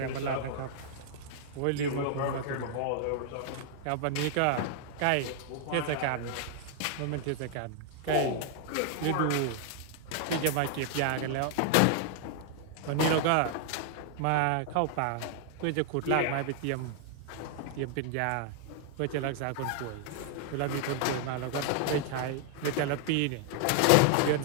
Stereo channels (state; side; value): different; both; correlation 0.00